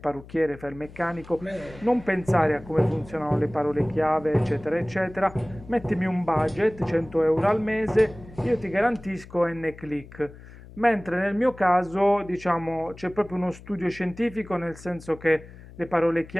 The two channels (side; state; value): left; noise; hum, 18 dB below the sound